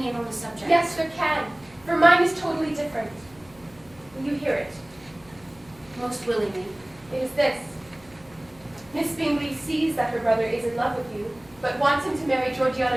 on the subject? Yes, there can, for mine is totally different. Will you hear it? Most willingly. It is this. Miss Bingley sees that her brother is in love with you, but wants him to marry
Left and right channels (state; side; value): noise; left; hum, 27 dB below the sound